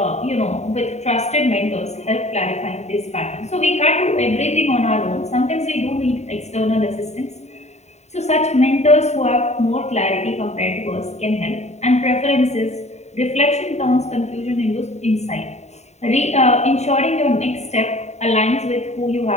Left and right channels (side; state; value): right; late; 0.32 ms